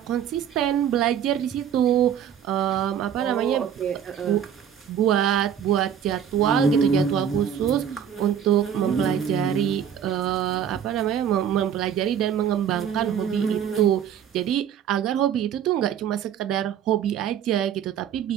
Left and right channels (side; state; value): left; quieter; 8.9 dB